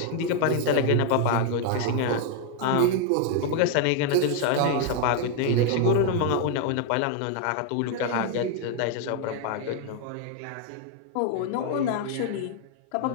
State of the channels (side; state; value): both; different; correlation 0.00